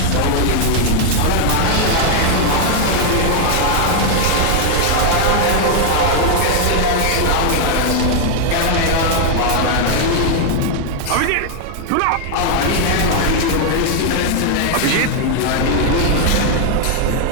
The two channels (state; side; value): different; both; correlation 0.00